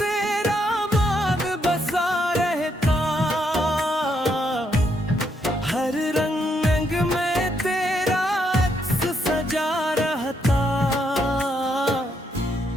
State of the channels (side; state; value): both; normal; correlation 0.76